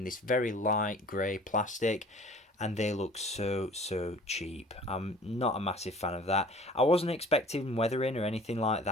this very light grey plastic, and they look so cheap. I'm not a massive fan of that. I wasn't expecting weathering or anything like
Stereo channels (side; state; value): both; normal; correlation 0.48